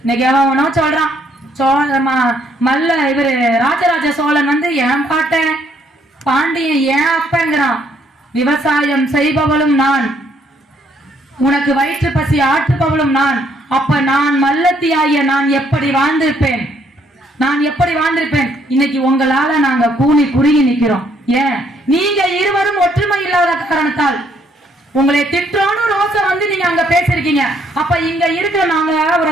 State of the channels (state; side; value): normal; both; correlation 0.68